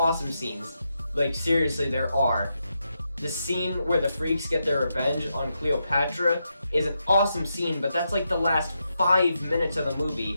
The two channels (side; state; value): both; inverted; correlation -0.84